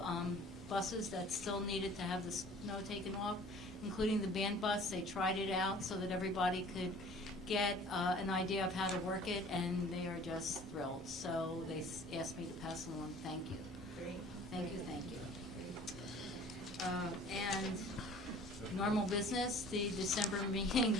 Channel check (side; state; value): both; normal; correlation 0.49